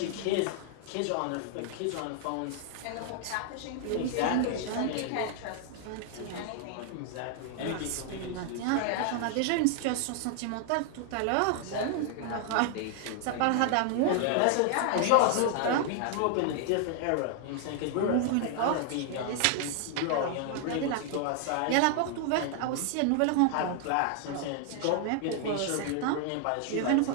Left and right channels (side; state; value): both; different; correlation 0.00